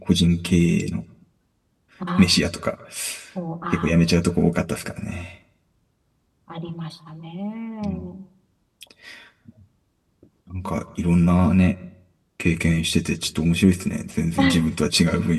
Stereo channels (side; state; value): both; identical; correlation 1.00